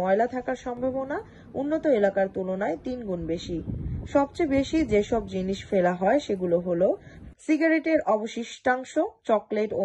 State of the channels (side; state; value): both; identical; correlation 1.00